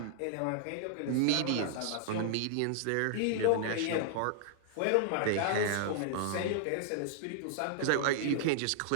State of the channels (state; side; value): different; both; correlation -0.01